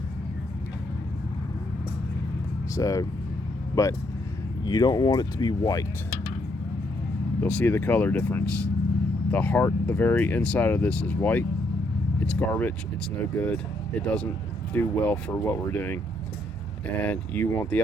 So, but you don't want it to be white. You'll see the color difference. The heart, the very inside of this is white. It's garbage, it's no good. It doesn't do well for what we're doing. And you want the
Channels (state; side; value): normal; both; correlation 0.74